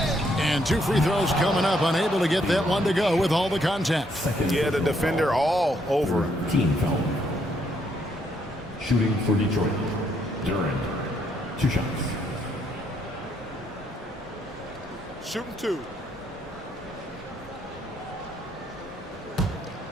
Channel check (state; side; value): normal; both; correlation 0.72